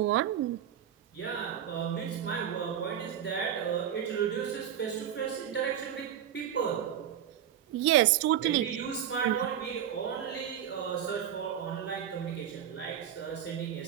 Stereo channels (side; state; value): left; quieter; 9.8 dB